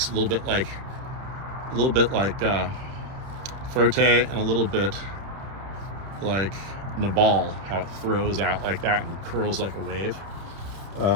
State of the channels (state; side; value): late; left; 30 ms